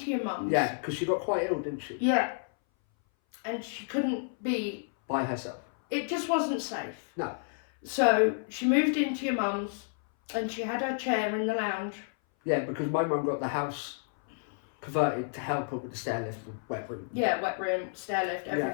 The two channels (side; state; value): right; silent; 57 dB below the other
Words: your mum's. Yeah, because she got quite ill, didn't she? Yeah. And she couldn't be... by herself. It just wasn't safe. No. So she moved into your mum's and she had her chair in the lounge. Yeah, because my mum got the house converted to help her with the stair lift and wet room. Yeah, wet room, stair lift,